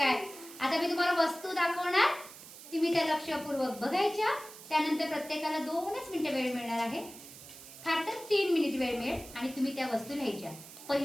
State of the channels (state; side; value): noise; right; hiss, 16 dB below the sound